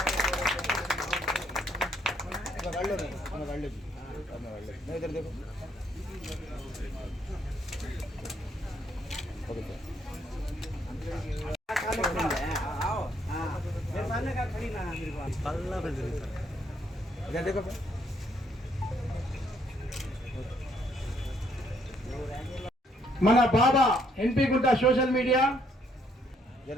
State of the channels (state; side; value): normal; both; correlation 0.70